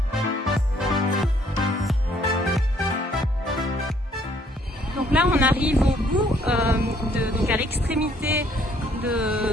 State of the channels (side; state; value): both; normal; correlation 0.64